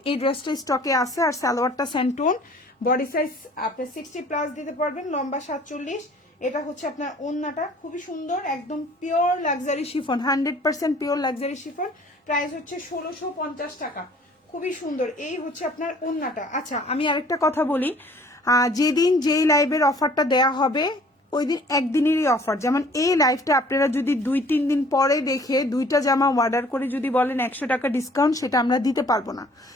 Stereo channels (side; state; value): both; normal; correlation 0.54